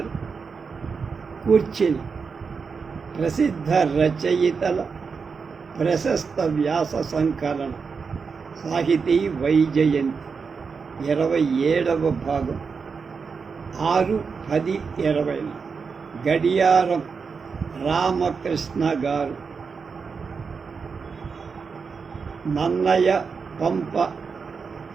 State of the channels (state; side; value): quieter; left; 5.4 dB